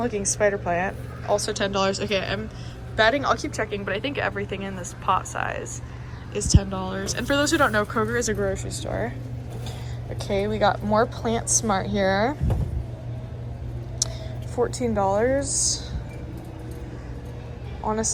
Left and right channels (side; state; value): both; identical; correlation 1.00